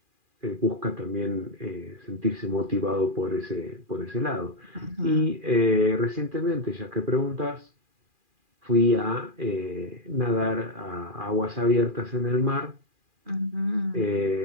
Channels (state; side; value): late; left; 2.4 ms